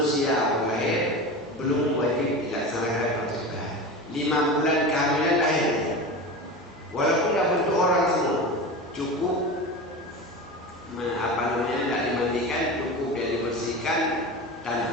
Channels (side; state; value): both; normal; correlation 0.28